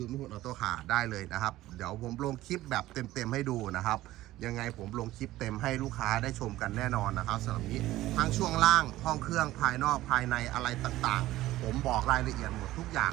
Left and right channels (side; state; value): left; quieter; 15.9 dB